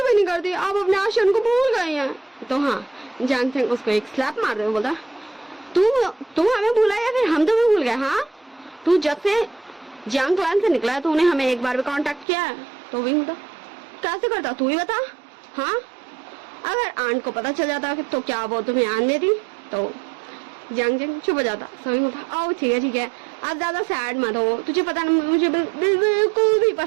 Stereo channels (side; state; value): left; drops out; at 12.2 s